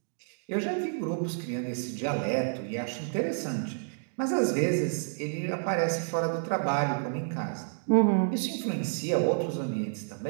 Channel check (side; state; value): left; silent; digital silence